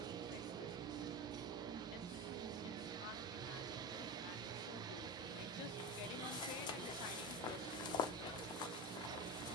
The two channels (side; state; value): both; normal; correlation 0.24